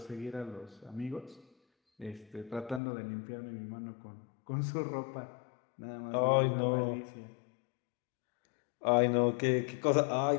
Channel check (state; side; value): drops out; right; at 2.8 s